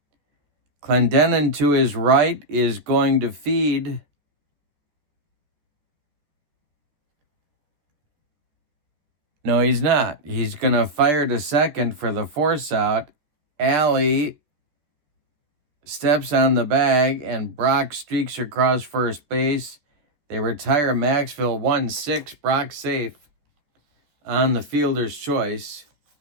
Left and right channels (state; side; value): late; left; 13 ms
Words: Clendenin to his right is going to feed No, he's not. He's going to fire to second for the force out. Alley steps on the bag, and Brock streaks across first base. They retire Maxville 1-6. Brock safe on the fielder's choice.